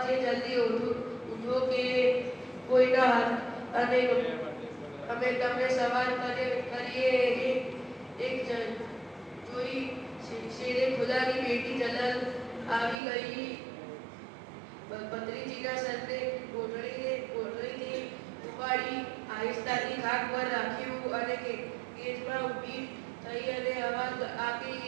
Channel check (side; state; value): left; drops out; at 13.0 s